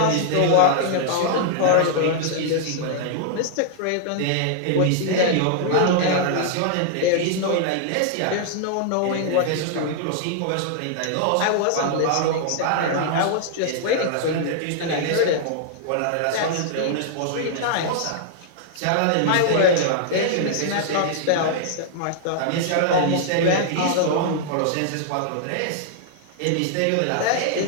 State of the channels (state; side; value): different; both; correlation -0.01